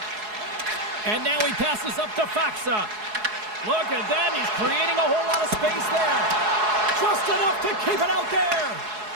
And now he passes up to Faxa. Look at that. He's creating a whole lot of space there. Just enough to keep it out there.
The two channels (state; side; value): late; left; 4.7 ms